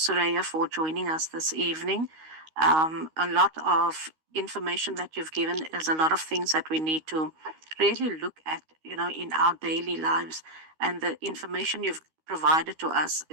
for joining us this evening. A lot of information that you've given is a lot of things that we need to really look at, in our daily lives. And the information you've provided to us,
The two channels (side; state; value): left; late; 13 ms